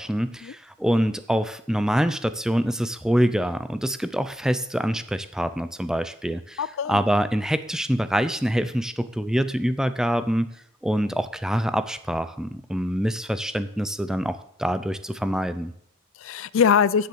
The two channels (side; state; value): both; normal; correlation 0.75